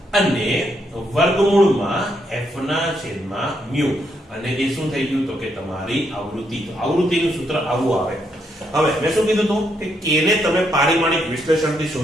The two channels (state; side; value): normal; both; correlation 0.77